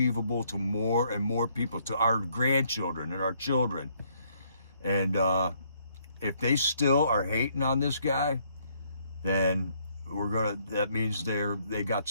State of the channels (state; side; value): inverted; both; correlation -0.69